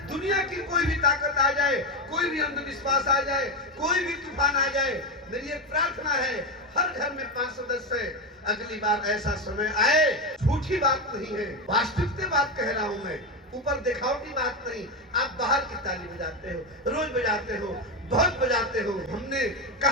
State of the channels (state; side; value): normal; both; correlation 0.12